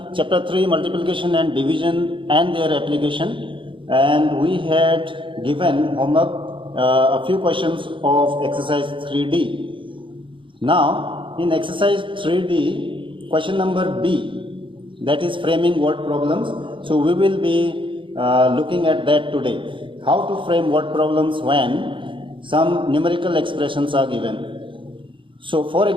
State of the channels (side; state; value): left; late; 0.24 ms